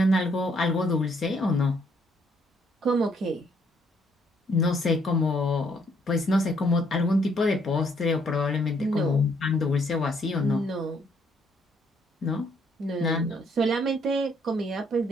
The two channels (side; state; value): both; normal; correlation 0.69